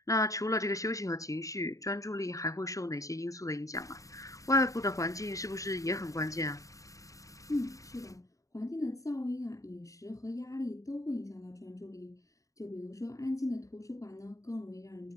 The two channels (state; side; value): late; right; 0.16 ms